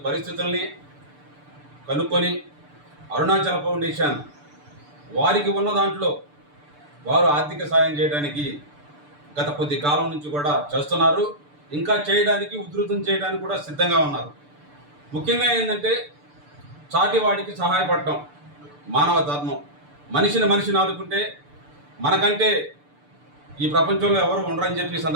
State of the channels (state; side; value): late; left; 6.8 ms